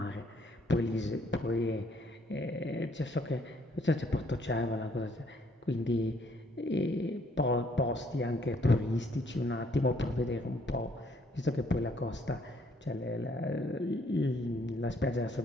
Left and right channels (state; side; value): normal; both; correlation 0.66